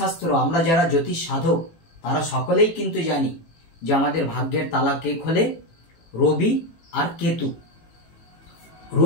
আমরা যারা জ্যোতিষ সাধক তারা সকলেই কিন্তু জানি যে আমাদের ভাগ্যের তালা কে খোলে? রবি আর কেতু।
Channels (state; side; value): late; right; 18 ms